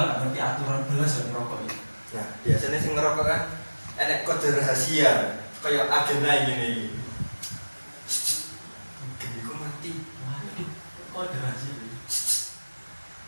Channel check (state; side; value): inverted; both; correlation -1.00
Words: gak ngerti aturan belas yang ngerokok iki. Nah, biasanya sing ngerokok kan enek kode rahasia kaya agenda ngene iki. Geniku mati. Waduh, kok ada rahasia iki?